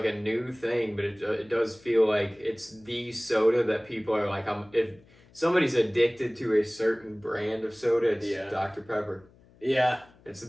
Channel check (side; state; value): left; noise; hum, 28 dB below the sound